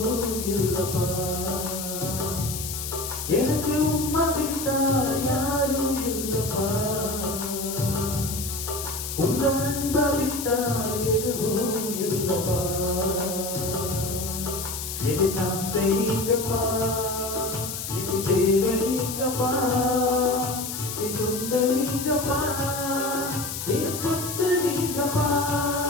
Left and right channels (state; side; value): noise; left; hiss, 6 dB below the sound